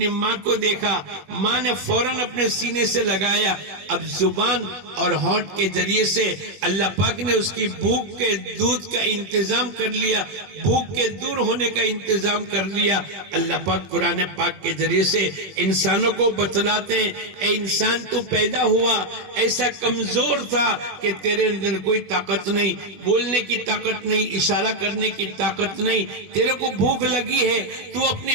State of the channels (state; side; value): late; left; 21 ms